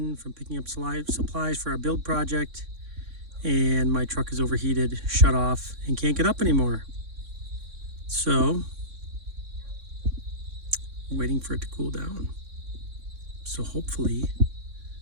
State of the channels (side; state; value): left; late; 3.6 ms